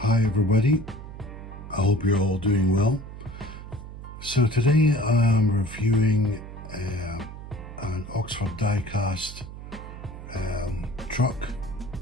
Hi everybody, I hope you're all doing well. So today I'm reviewing an Oxford Diecast truck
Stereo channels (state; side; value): noise; right; hum, 12 dB below the sound